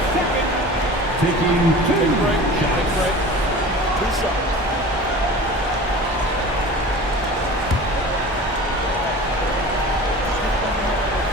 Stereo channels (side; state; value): both; normal; correlation 0.38